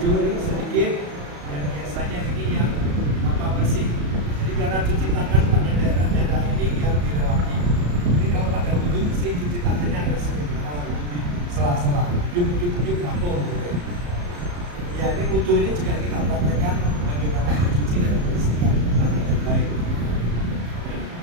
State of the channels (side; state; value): left; late; 34 ms